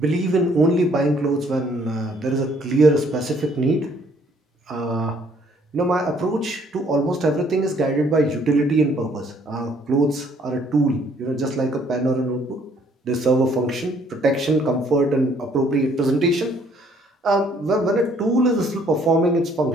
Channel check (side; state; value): both; normal; correlation 0.63